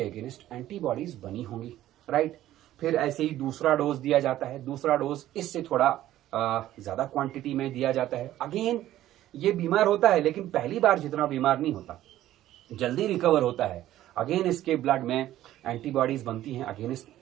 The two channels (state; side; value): quieter; left; 13.7 dB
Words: अगेंस्ट एंटीबॉडीज बनी होंगी, राइट। फिर ऐसे ही दूसरा डोज दिया जाता है, दूसरा डोज इससे थोड़ा ज्यादा क्वांटिटी में दिया जाता है। अगेन ये बीमार होता है, लेकिन पहली बार जितना बीमार नहीं होता, जल्दी रिकवर होता है। अगेन इसके ब्लड में एंटीबॉडीज बनती हैं, अगेंस्ट